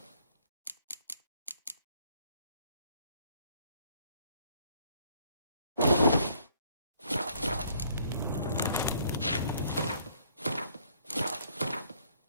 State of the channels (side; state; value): both; inverted; correlation -0.64